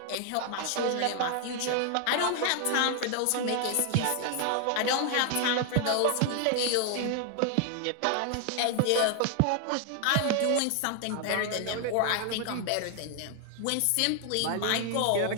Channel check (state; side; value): different; both; correlation 0.00